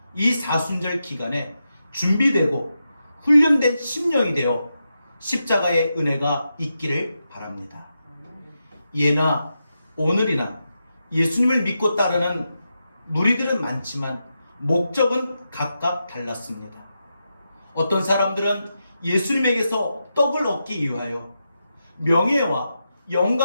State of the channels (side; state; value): both; inverted; correlation -0.87